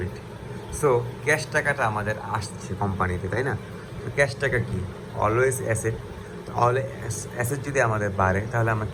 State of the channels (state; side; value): identical; both; correlation 1.00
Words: সো ক্যাশ টাকাটা আমাদের আসছে কোম্পানিতে, তাই না? তো ক্যাশ টাকা কি, অলওয়েজ অ্যাসেট। তাহলে অ্যাসেট যদি আমাদের বাড়ে তাহলে আমরা